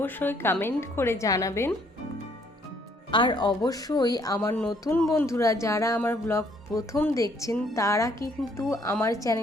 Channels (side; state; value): both; normal; correlation 0.65